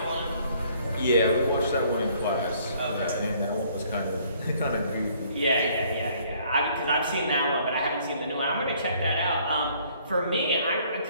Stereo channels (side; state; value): both; inverted; correlation -0.62